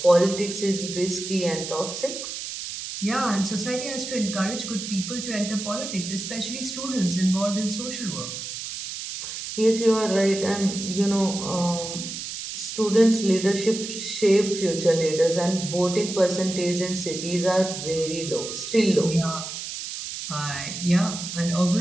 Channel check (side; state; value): right; noise; hiss, 7 dB below the sound